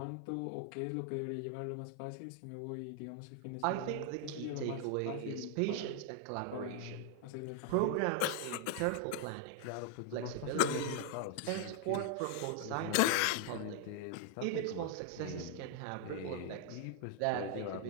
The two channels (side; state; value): both; different; correlation 0.00